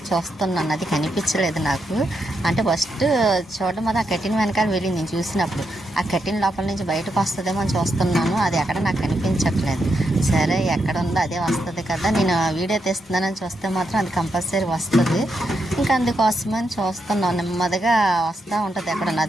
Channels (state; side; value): normal; both; correlation 0.82